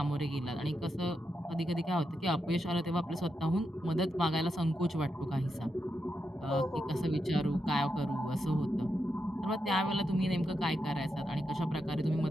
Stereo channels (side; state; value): both; normal; correlation 0.85